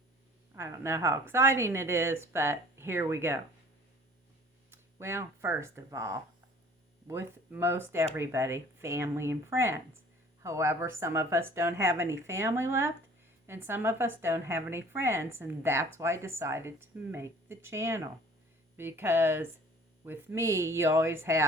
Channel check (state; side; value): normal; both; correlation 0.51